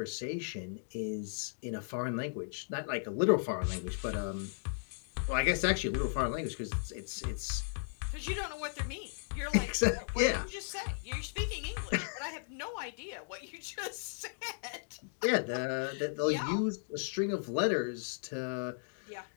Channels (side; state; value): right; silent; digital silence